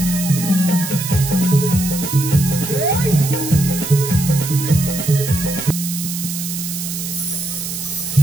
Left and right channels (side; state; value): right; noise; hiss, 6 dB below the sound